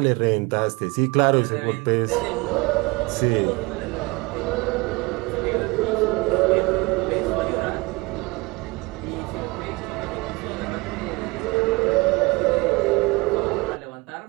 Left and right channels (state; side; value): quieter; left; 24.7 dB